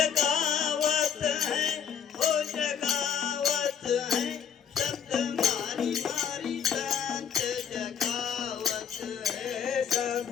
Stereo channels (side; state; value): right; quieter; 7.8 dB